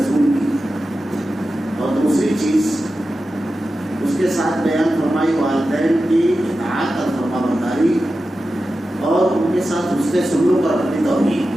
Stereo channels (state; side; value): normal; both; correlation 0.92